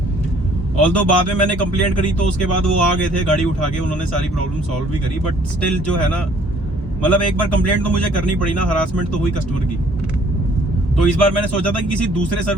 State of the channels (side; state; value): both; normal; correlation 0.59